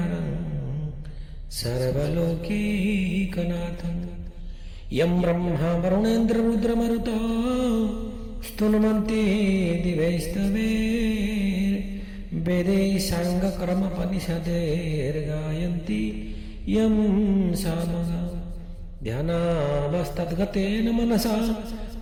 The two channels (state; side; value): identical; both; correlation 1.00